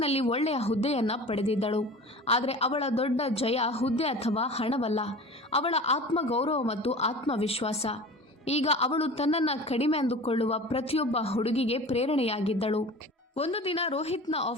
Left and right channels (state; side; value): normal; both; correlation 0.38